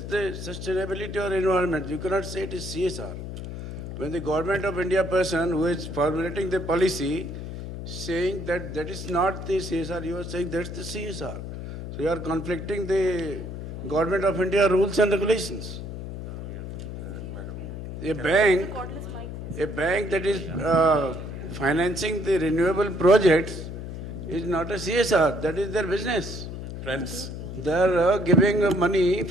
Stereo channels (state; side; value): noise; left; hum, 8 dB below the sound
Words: the sustainability or environment. You cannot say it is CSR. When the government of India person who is formulating the policy saying that that is not the CSR, you are saying that's the CSR. So you are conflicting the government of India rules and regulations. A bank that is financing the renewable projects is not a CSR. That is their business. Friends. They are giving money,